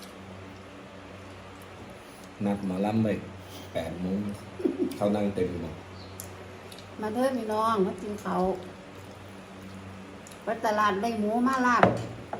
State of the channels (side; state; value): both; identical; correlation 1.00